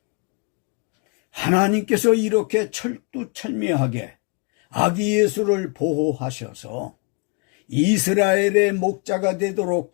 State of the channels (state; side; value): quieter; right; 34.2 dB